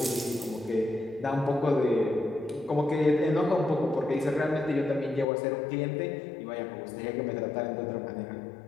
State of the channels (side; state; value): right; drops out; at 5.2 s